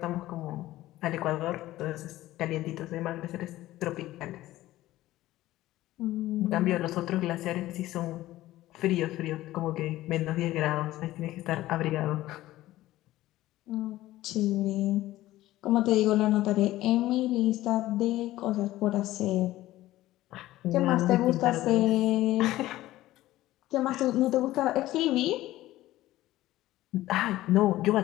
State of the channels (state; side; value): quieter; right; 15.8 dB